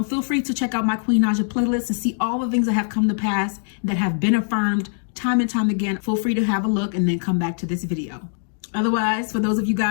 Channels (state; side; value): silent; right; digital silence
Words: feel free to check out my Queen Naija playlist and see all the things that have come to pass that have been affirmed time and time again. Feel free to have a look and then come back to this video. Otherwise, for those of you